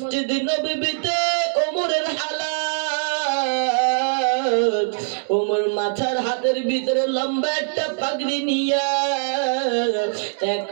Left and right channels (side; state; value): left; silent; 64 dB below the other